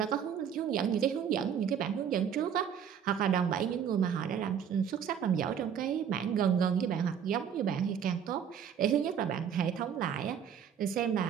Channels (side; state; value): left; quieter; 8.1 dB